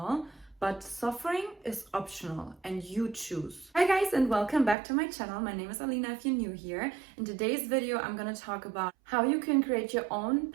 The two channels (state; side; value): drops out; left; at 4.8 s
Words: but suffering is optional and you choose. Hi guys, and welcome back to my channel. My name is Alina if you're new here. In today's video, I'm gonna talk about how you can create your own